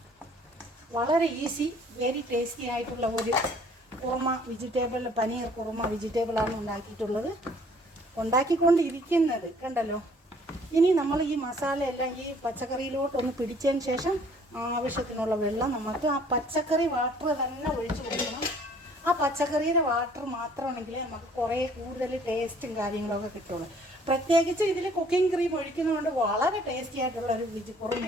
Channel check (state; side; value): normal; both; correlation 0.57